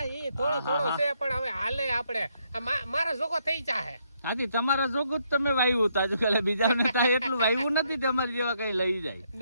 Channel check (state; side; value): inverted; both; correlation -0.75